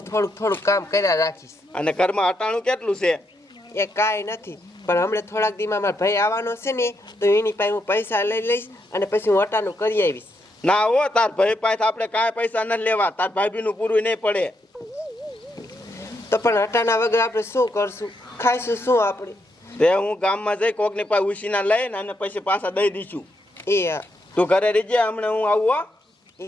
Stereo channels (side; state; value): both; normal; correlation 0.79